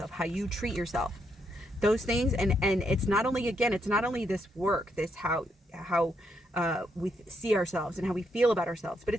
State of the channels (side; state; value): both; normal; correlation 0.77